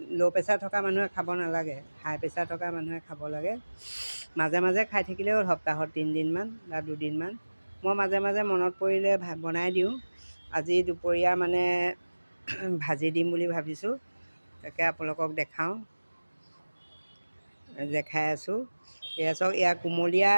ল' প্ৰেছাৰ থকা মানুহে খাব নালাগে, হাই প্ৰেছাৰ থকা মানুহে খাব লাগে। মাজে মাজে খাই থাকিলেও হ'ল, সপ্তাহত 3 দিনমান বা 2 দিনমান। মই মাজে মাজে মনত পৰিলে বনাই দিওঁ। আজি দুপৰীয়া মানে ভাজি দিম বুলি ভাবিছোঁ। তাকে আপোনালোকক দেখাওঁ, দেখাই আছোঁ। এয়া চাওক, এয়া কুমলীয়া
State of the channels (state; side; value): inverted; both; correlation -1.00